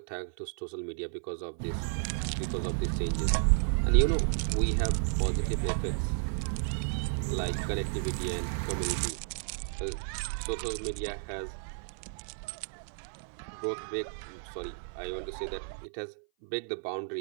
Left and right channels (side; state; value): left; silent; 55 dB below the other